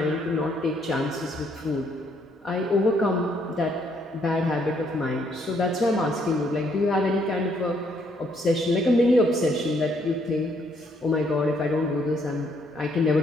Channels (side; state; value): both; normal; correlation 0.70